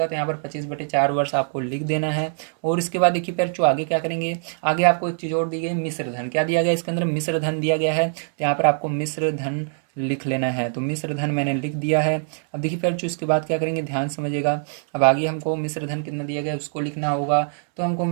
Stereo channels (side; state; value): left; silent; 63 dB below the other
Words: तो यहाँ पर 25/4 वर्ष आपको लिख देना है। और इसके बाद देखिए फिर जो आगे क्या करेंगे, आगे आपको एक चीज़ और दी गई, मिश्र धन। क्या दिया गया इसके अंदर, मिश्र धन दिया गया है। तो यहाँ पर आपको मिश्र धन लिख लेना है। तो मिश्र धन मैंने लिख दिया है। अब देखिए फिर जो इसके बाद क्या करेंगे, ध्यान समझिएगा। अब आगे हमको मिश्र धन कितना दिया गया है उसको लिखना होगा। तो हमको